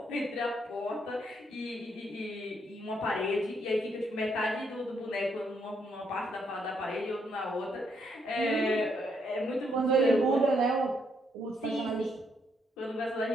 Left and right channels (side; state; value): both; normal; correlation 0.74